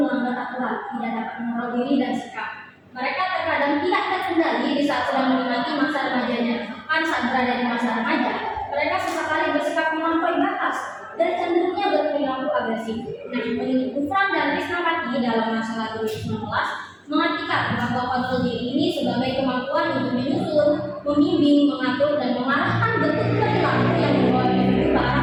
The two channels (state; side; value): identical; both; correlation 1.00